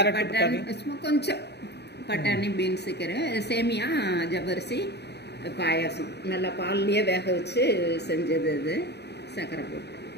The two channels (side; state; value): right; late; 0.49 ms